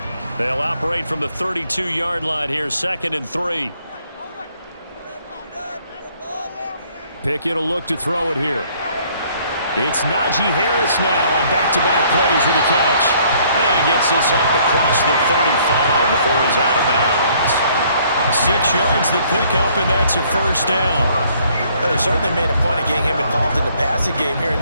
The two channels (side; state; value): both; inverted; correlation -0.62